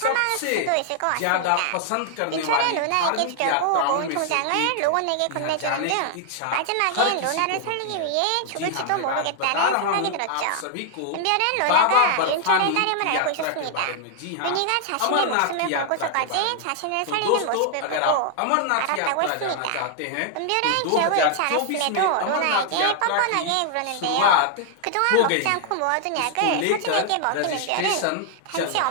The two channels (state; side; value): different; both; correlation 0.00